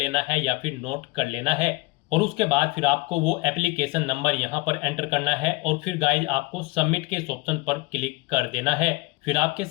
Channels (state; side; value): quieter; right; 22.7 dB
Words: है या फिर नोट कर लेना है और उसके बाद फिर आपको वो एप्लीकेशन नंबर यहाँ पर एंटर करना है और फिर गाइज आपको सबमिट के इस ऑप्शन पर क्लिक कर देना है। फिर आपके